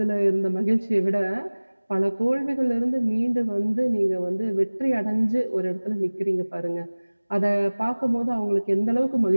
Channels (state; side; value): inverted; both; correlation -1.00